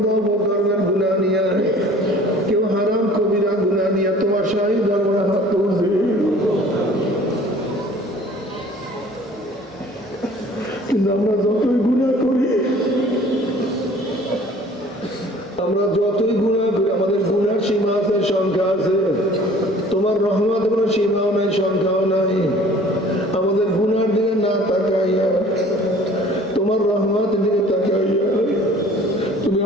বকরমের গুনাহ নিয়া, কেউ হারাম কবিরা গুনাহ নিয়া তোমার শাহী দরবারে হাত তুলছি। কিন্তু আমরা যতই গুনাহ করি, আমাদের গুনার সীমা আছে, সংখ্যা আছে। তোমার রহমত কোনো সীমাও নাই, সংখ্যাও নাই। আমাদের গুনার দিকে না তাকাইয়া তোমার রহমতের দিকে তাকাইয়া তুমি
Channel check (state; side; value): normal; both; correlation 0.50